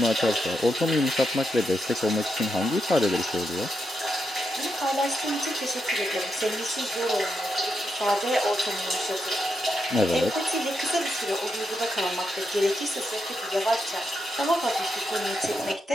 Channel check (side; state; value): both; normal; correlation 0.84